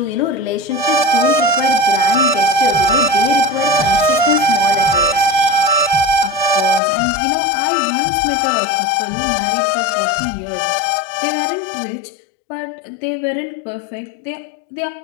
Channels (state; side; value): drops out; right; at 6.8 s